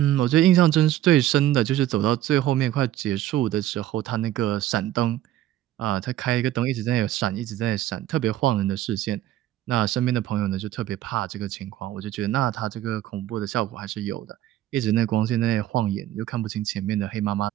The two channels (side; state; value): left; quieter; 13.4 dB